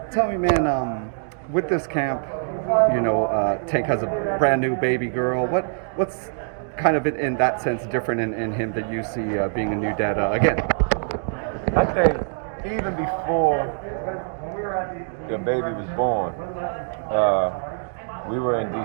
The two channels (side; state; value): left; silent; digital silence